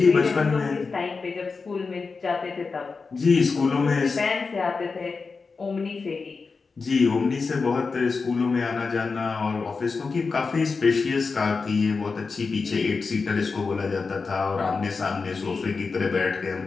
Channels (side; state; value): right; quieter; 4.6 dB